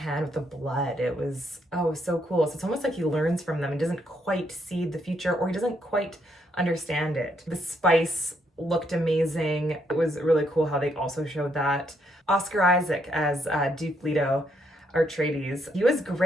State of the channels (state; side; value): normal; both; correlation 0.74